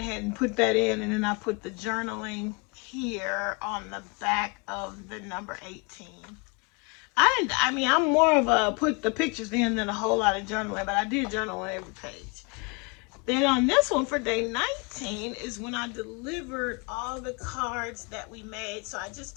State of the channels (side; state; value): right; quieter; 30.8 dB